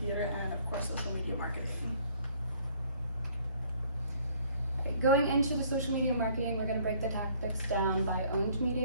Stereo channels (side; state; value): both; inverted; correlation -0.59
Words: and of course social media marketing. Going into the social media marketing, we're going to break the tactics down by owned